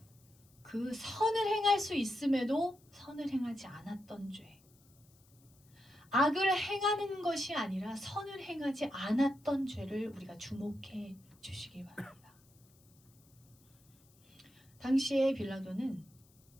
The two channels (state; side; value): noise; left; hiss, 30 dB below the sound